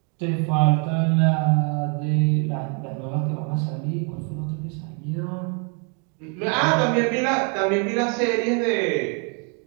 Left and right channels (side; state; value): left; quieter; 37.8 dB